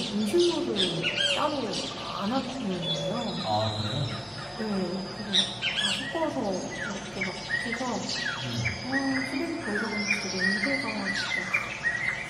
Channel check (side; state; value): both; identical; correlation 1.00